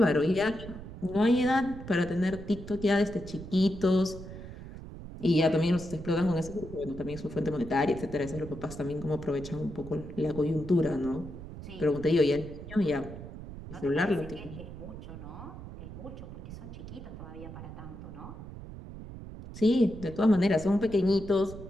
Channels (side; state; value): right; noise; rumble, 12 dB below the sound